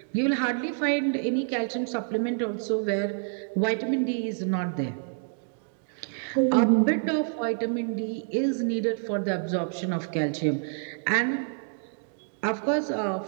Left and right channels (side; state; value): left; silent; digital silence